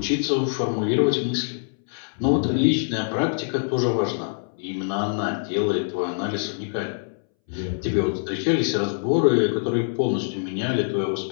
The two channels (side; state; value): right; silent; 62 dB below the other